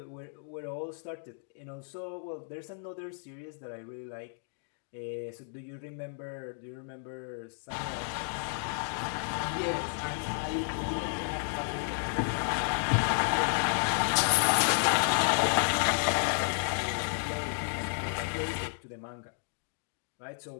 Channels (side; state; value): right; silent; 56 dB below the other